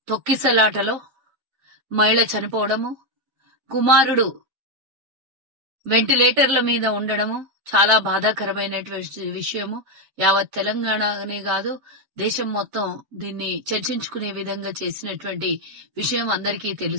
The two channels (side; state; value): left; late; 7.5 ms